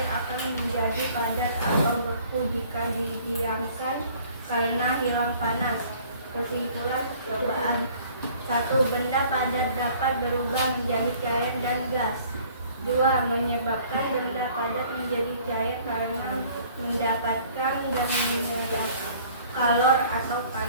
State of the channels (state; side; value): inverted; both; correlation -0.54